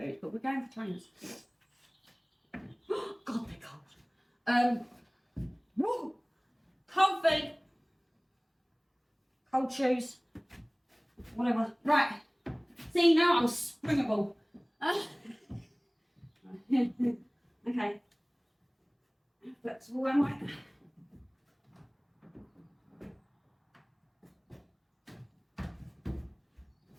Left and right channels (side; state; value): both; identical; correlation 1.00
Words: but we're going for trainers. God, they're cold. Woo! Cold feet. Cold shoes. Whatever. Right. See, now I'm springable. Okay. Flexible, am I?